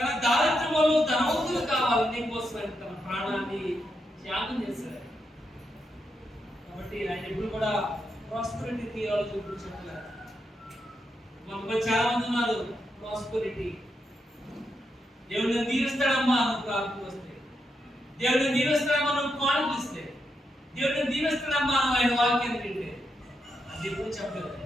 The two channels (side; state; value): both; normal; correlation 0.83